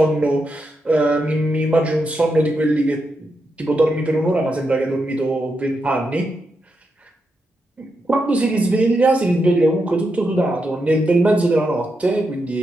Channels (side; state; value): both; normal; correlation 0.85